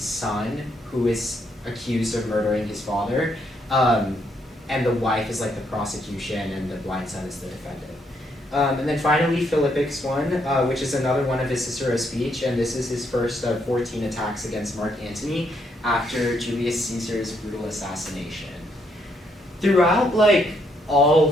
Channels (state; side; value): normal; both; correlation 0.74